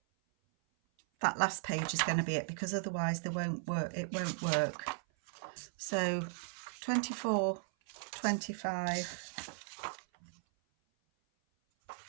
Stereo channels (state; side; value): silent; left; 53 dB below the other